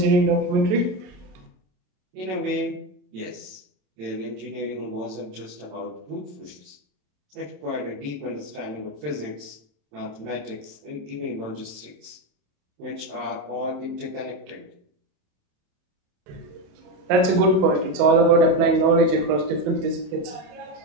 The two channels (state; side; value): late; left; 28 ms